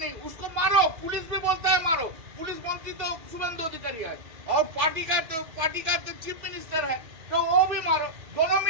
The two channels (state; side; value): late; left; 2.3 ms